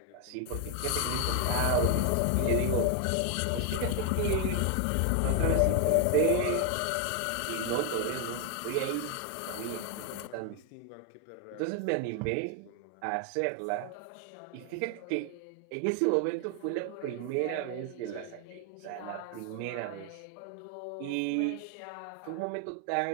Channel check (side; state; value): both; different; correlation 0.01